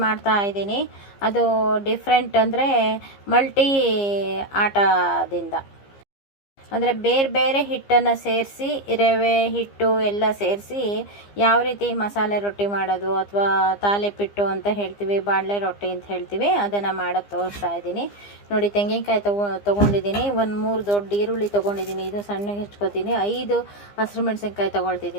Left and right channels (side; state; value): right; late; 15 ms